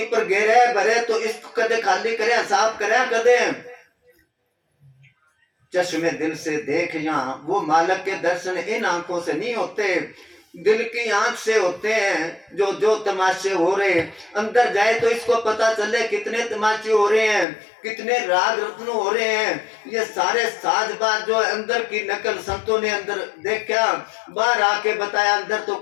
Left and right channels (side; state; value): right; drops out; at 17.4 s